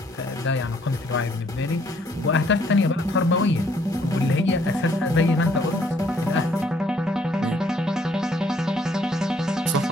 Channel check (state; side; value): normal; both; correlation 0.65